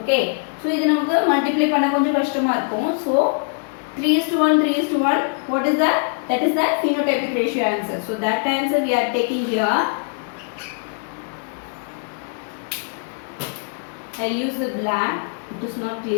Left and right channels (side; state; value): right; silent; 60 dB below the other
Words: so இது நமக்கு multiply பண்ண கொஞ்சம் கஷ்டமா இருக்கும். So 3:1 what is that? That is the phenotypic ratio answer. So that answer we are taking here. I use the black, it is not